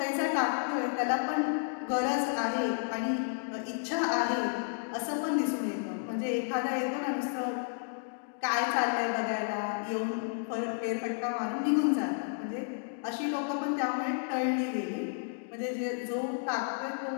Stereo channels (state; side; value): silent; right; digital silence